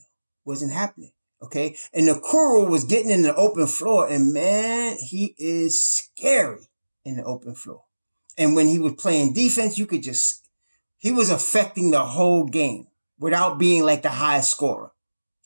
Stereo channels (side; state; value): both; inverted; correlation -1.00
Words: Okay. And Okoro was getting in the open floor, and man, he is scary in the open floor. And when he was playing defense, he was affecting the whole game without being like the highest scorer.